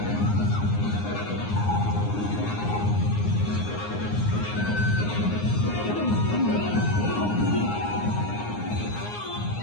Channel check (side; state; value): right; late; 9.7 ms